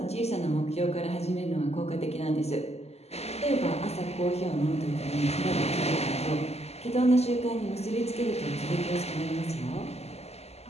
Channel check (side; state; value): right; late; 0.30 ms